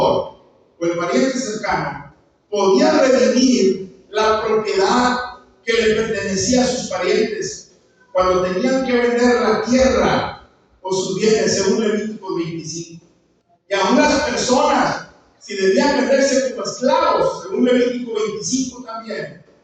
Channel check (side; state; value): both; identical; correlation 1.00